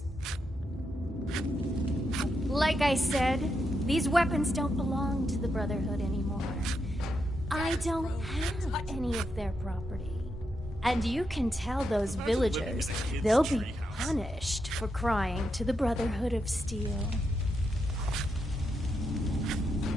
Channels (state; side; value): normal; both; correlation 0.83